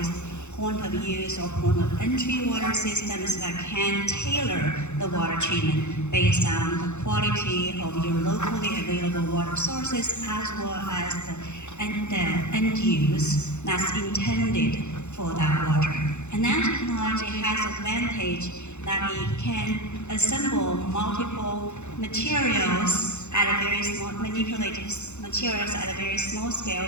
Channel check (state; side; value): late; right; 0.83 ms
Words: point of use or point of entry water systems that can tailor the water treatment based on the quality of your locally available water sources as well as the end use that's intended for that water. And nanotechnology has advantage that it can assemble multiple materials at a very small, manipulated materials at a very small scale,